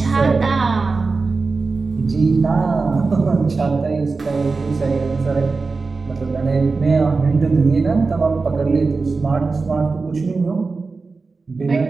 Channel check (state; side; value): quieter; left; 4.1 dB